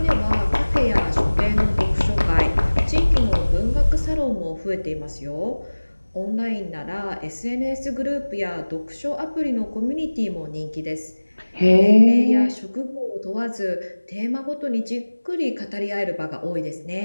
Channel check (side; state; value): both; inverted; correlation -1.00